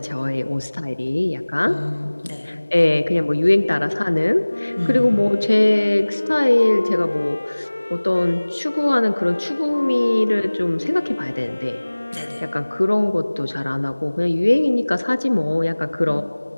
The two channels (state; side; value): inverted; both; correlation -1.00